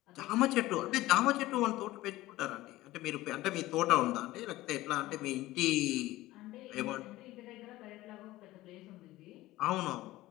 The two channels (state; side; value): quieter; right; 17.4 dB